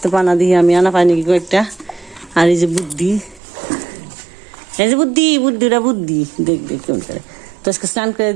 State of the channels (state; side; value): drops out; left; at 3.4 s